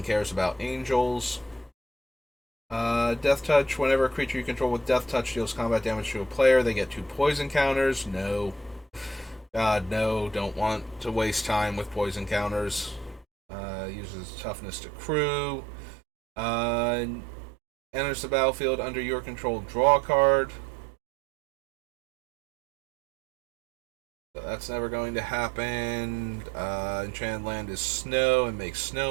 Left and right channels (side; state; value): left; drops out; at 13.2 s